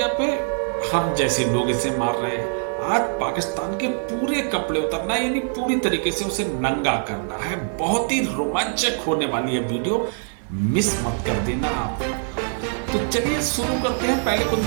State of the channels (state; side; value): silent; left; digital silence